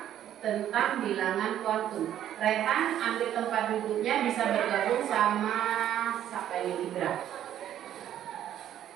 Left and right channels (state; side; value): quieter; left; 11.2 dB